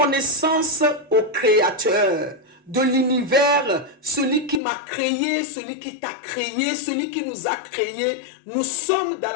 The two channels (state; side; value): drops out; right; at 4.6 s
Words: au Créateur de l'univers, celui qui m'a créé, celui qui t'a créé, celui qui nous a créés. Nous sommes dans